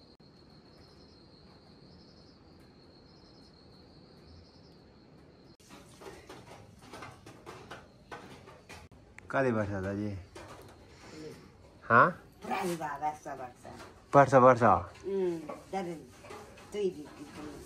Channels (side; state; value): both; identical; correlation 1.00